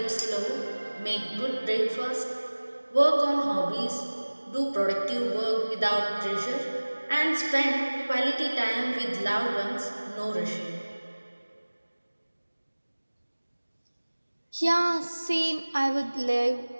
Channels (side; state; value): both; inverted; correlation -1.00